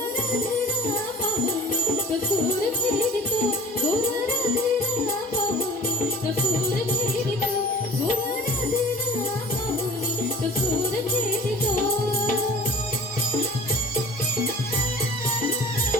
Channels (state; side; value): normal; both; correlation 0.45